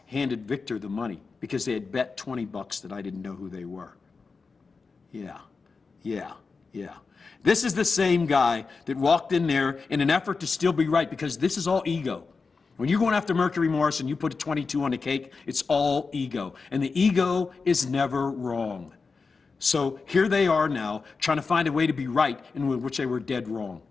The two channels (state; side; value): quieter; right; 4.6 dB